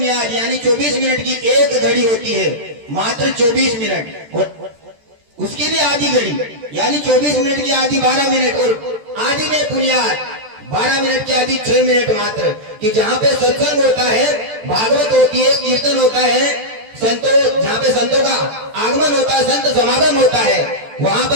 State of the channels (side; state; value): left; late; 14 ms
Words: यानी 24 मिनट की एक घड़ी होती है, मात्र 24 मिनट, और उसकी भी आधी घड़ी यानी 24 मिनट की आधी 12 मिनट, और आधी में बुनियाद 12 मिनट की आधी 6 मिनट मात्र, कि जहाँ पे सत्संग होता है, भागवत होती है, कीर्तन होता है, संतों जहाँ पे संतों का आगमन होता है, संत समागम होता है, वहां